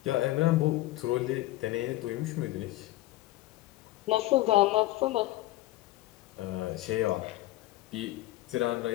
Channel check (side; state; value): right; quieter; 17.2 dB